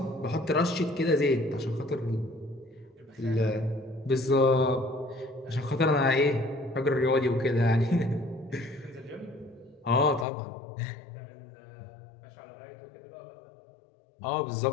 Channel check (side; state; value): right; drops out; at 10.2 s